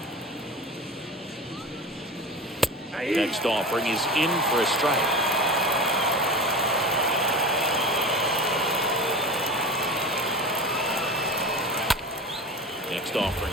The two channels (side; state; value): both; normal; correlation 0.30